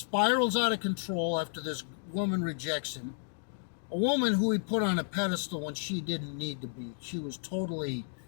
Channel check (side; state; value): right; silent; digital silence